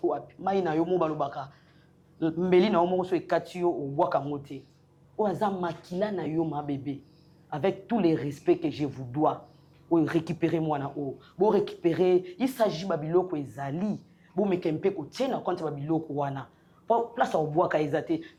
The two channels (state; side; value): identical; both; correlation 1.00